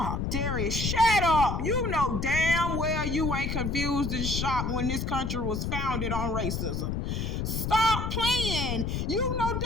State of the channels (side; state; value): left; noise; rumble, 1 dB below the sound